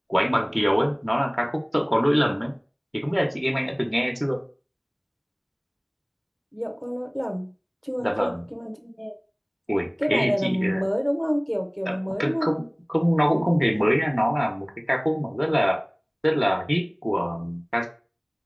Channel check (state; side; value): identical; both; correlation 1.00